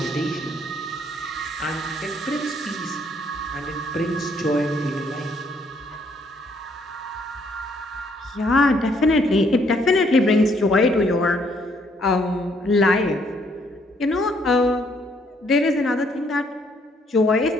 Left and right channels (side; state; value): both; normal; correlation 0.68